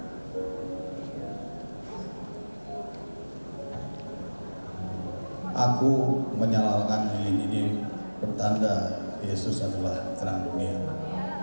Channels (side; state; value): both; inverted; correlation -1.00